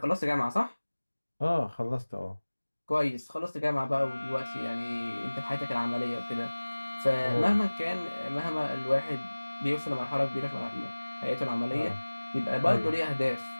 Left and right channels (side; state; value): both; inverted; correlation -1.00